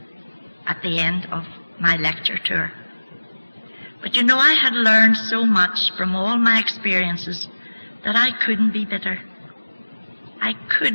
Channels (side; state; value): both; inverted; correlation -1.00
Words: at the end of my lecture tour. But you know, I had learned so much from all my experiences that I couldn't be bitter. I